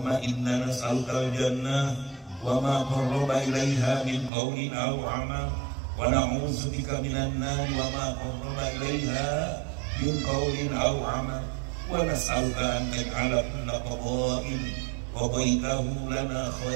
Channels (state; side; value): drops out; left; at 4.3 s